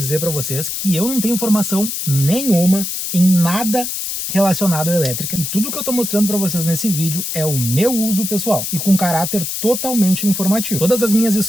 para vocês que eu não tenho informação nenhuma em nada relacionado à elétrica, e tudo que eu estou mostrando para vocês nesse vídeo é o meu uso pessoal e com caráter totalmente informativo. Todas as minhas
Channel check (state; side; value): noise; left; hiss, 4 dB below the sound